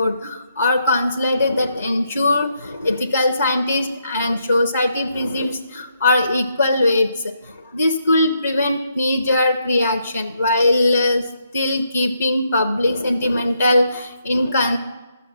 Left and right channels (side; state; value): both; inverted; correlation -0.77